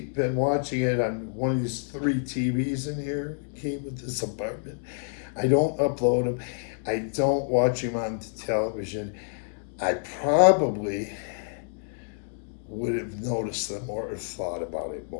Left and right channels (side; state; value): right; silent; digital silence